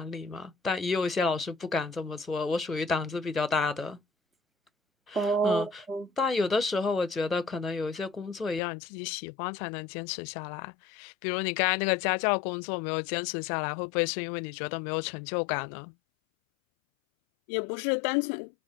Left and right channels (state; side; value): drops out; right; at 8.6 s